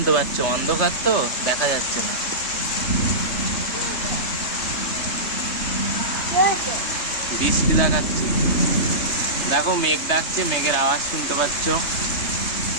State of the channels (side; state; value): right; late; 3.3 ms